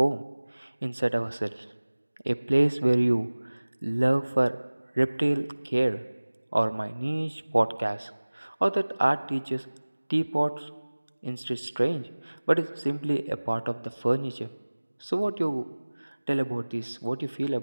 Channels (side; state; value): both; inverted; correlation -1.00